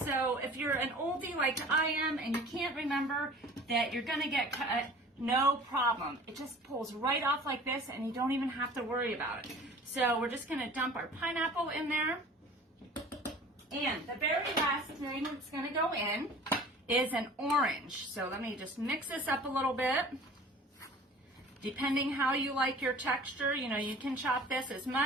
if you're an oldie like I am and you can't remember that you're gonna get cut, no problem. It just pulls right off like this and you don't even have to worry about it. So we're just gonna dump our pineapple in there. And the very last thing that's gonna go in is an orange. So let me just mix this up a little bit. Depending how you like your texture, you know, you can chop this as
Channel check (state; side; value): normal; both; correlation 0.45